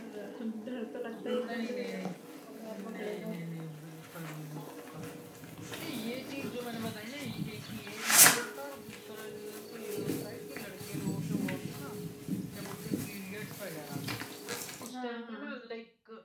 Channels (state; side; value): identical; both; correlation 1.00